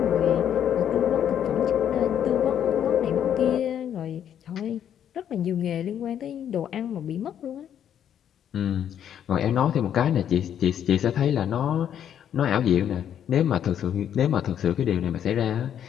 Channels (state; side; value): quieter; right; 9.6 dB